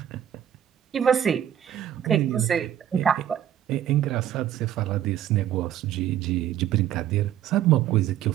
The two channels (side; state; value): left; quieter; 10.9 dB